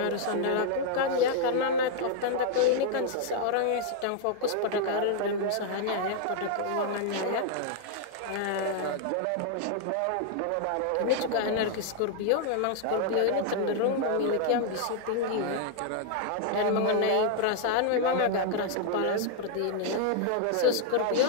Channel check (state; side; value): different; both; correlation 0.00